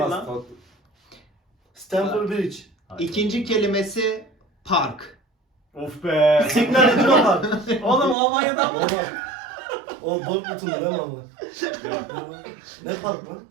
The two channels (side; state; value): left; drops out; at 8.2 s